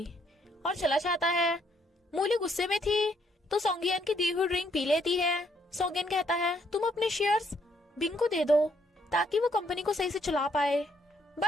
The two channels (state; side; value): normal; both; correlation 0.71